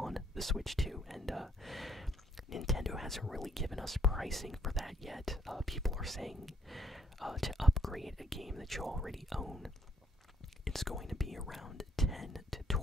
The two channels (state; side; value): normal; both; correlation 0.67